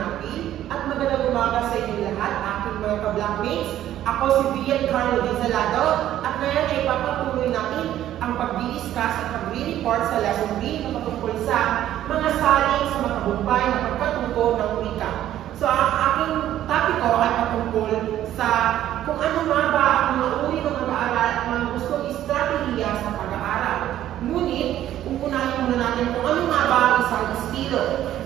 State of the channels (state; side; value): quieter; left; 12.4 dB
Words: at magandang umaga sa inyo lahat, aking mga ka-blackmates. Ako si Vian Carlo Dizalado at ngayon ay papatuloy natin ang pag-discuss at pag-report sa lesson B na patungkol sa mga salin sa matagumpay na pagkatuto ng wika. So ang aking topic ko ay patungkol sa kung ano nga ba ang mga uri ng pag-aaral at mga gustong estratehiya sa pag-aaral. Ngunit, unahin muna natin kung ano nga ba ang isang estilo.